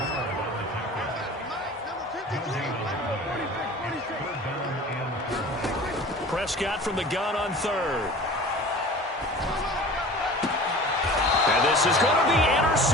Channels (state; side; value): normal; both; correlation 0.41